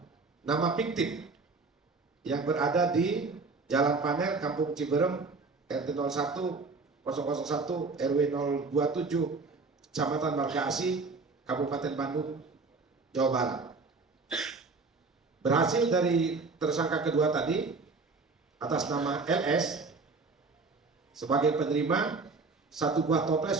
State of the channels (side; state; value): left; quieter; 4.1 dB